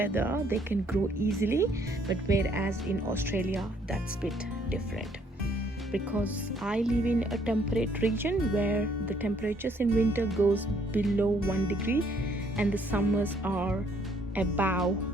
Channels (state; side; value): normal; both; correlation 0.66